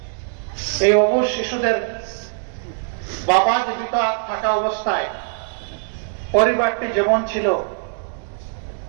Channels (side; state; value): left; silent; 64 dB below the other